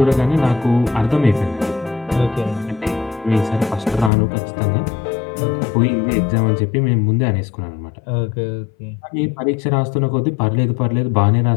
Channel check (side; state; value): right; drops out; at 4.1 s